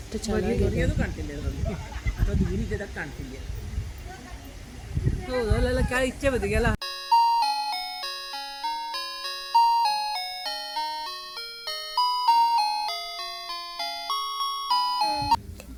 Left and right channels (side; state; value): both; identical; correlation 1.00